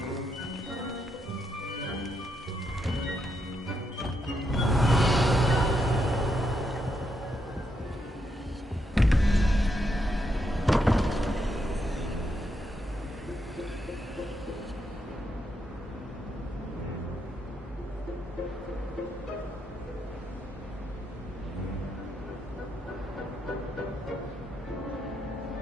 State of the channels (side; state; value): both; normal; correlation 0.80